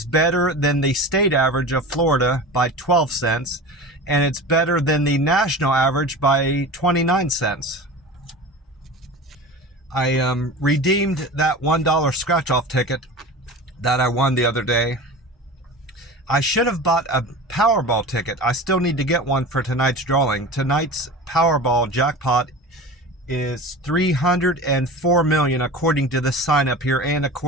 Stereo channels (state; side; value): normal; both; correlation 0.33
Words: better than the state average of Florida by 12 cents. And it's better than the national average by 29 cents. I redeemed that $1 scratch-off ticket that I won the other day. I should have bought a Powerball ticket. I still need to get one for tonight's drawing. Tonight's Powerball jackpot is $304 million according to the sign up here and